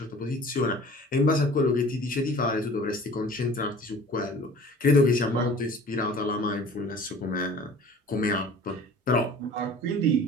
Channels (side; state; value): both; normal; correlation 0.46